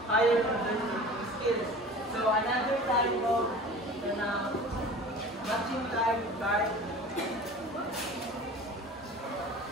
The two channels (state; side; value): normal; both; correlation 0.40